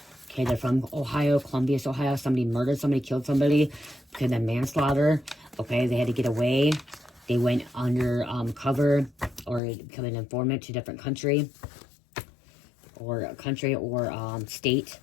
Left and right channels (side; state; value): right; drops out; at 9.6 s